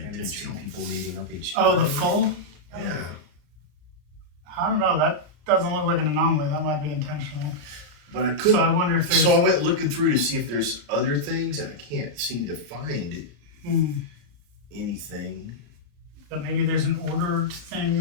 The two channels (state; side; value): late; left; 34 ms